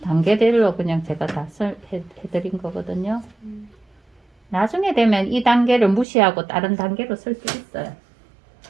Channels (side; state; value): left; drops out; at 6.1 s